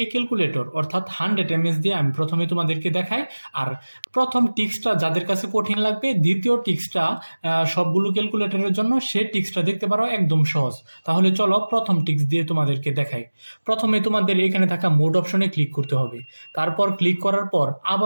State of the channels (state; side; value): inverted; both; correlation -1.00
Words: ক্যালকুলেটর অর্থাৎ 100 ms দিয়ে আমি প্রথমে তোমাদেরকে দেখাই। আর প্রথম টিক্সটা যাদের কাছে কঠিন লাগবে, দ্বিতীয় টিক্সটা সবগুলো ক্যালকুলেটরের জন্য, সে টিক্সটা দেখতে পারো, একদম সহজ। তাহলে চলো প্রথম টিক্স দিয়ে তোমাদেরকে দেখাই। প্রথমে তোমাদের এখানে থাকা মোড অপশনে ক্লিক করতে হবে। তারপর ক্লিক করার পর